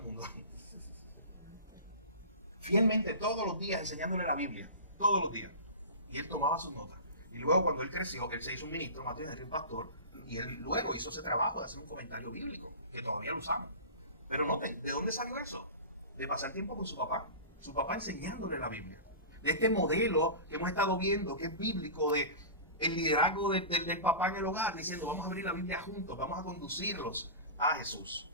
mundo. Fielmente, todos los días enseñándole la Biblia. Todos los días. Y él tomaba sus notas. Y luego cuando él creció, él se hizo un ministro, Matthew Henry, un pastor, y él luego hizo ese trabajo de hacer un comentario bíblico, que todavía lo usamos. Pero noten, ¿de dónde salió eso? De pasar tiempo con su papá. Su papá enseñándole la Biblia. De este modelo que hemos estado viendo, que es bíblico, de el liderazgo del papá en el hogar, diciendo, vamos a abrir la Biblia juntos, vamos a conducirlos a Jesús.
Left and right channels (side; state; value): both; inverted; correlation -0.32